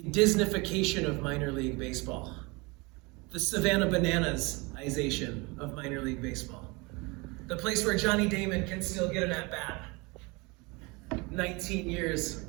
Disneyfication of minor league baseball, the Savannah Bananas-ization of minor league baseball, the place where Johnny Damon can still get an at-bat 19 years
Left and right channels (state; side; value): quieter; left; 26.5 dB